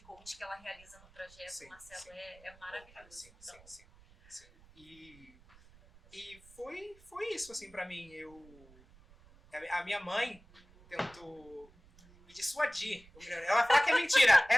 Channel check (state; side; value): noise; right; rumble, 25 dB below the sound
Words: coach que ela realiza no projeto, Marcelo, é maravilhoso. Sim. E foi isso, assim, pra mim. A minha mãe tentou me dissuadir. Ela fala que é mentira.